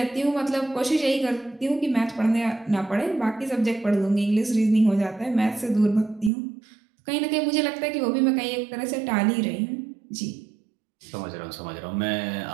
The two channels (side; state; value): left; drops out; at 6.3 s